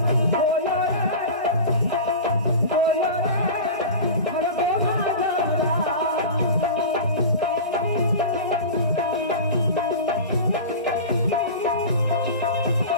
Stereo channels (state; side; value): inverted; both; correlation -0.31